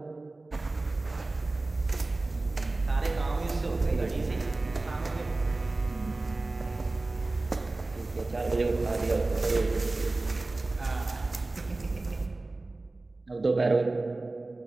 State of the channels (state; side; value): quieter; left; 3.1 dB